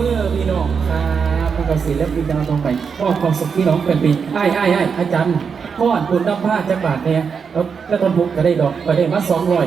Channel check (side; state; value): left; quieter; 6.1 dB